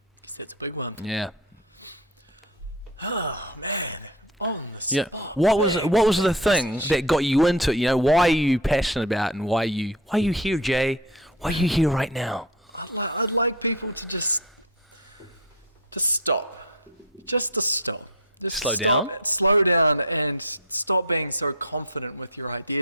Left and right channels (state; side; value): normal; both; correlation 0.25